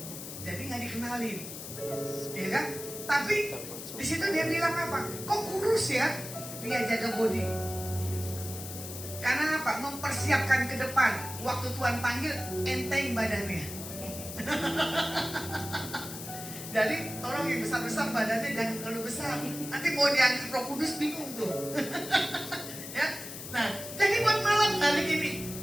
Jadi nggak dikenalin, ya kan? Tapi di situ dia bilang apa? Kok kurus ya? Dia jaga body. Karena apa? Mempersiapkan ke depan. Waktu Tuhan panggil, enteng badannya. Jadi tolong yang besar-besar badannya jangan terlalu besar. Nanti mau diangkat Roh Kudus bingung tuh. Ya. Nah, jadi buat malam hari ini,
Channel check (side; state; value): left; noise; hiss, 10 dB below the sound